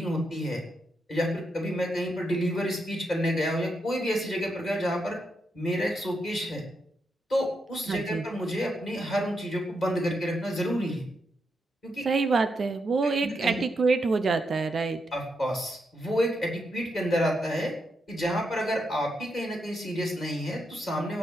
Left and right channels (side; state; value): both; normal; correlation 0.82